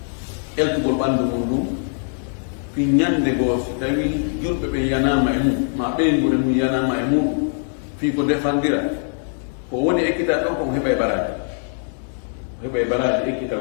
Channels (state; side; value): silent; right; 64 dB below the other